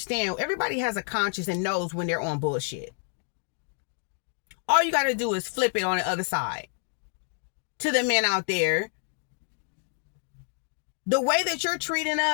Everybody has a conscience and knows when they're on bullshit. All you got to do is flip it on the other side. To the men out there, the way that you're treating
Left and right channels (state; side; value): silent; right; digital silence